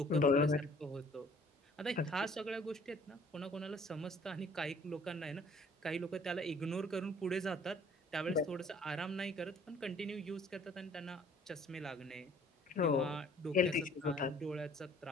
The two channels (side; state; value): both; normal; correlation 0.56